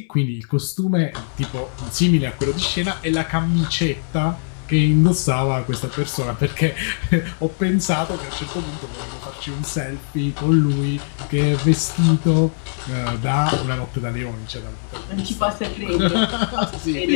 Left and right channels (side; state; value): right; silent; 62 dB below the other